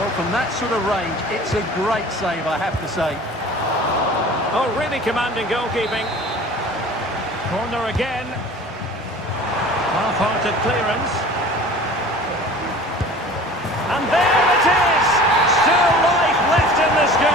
from that sort of range, it's a great save, I have to say. Oh, really commanding goalkeeping. Corner again. Half-hearted clearance. And there it is! Still life left in this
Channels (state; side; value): normal; both; correlation 0.43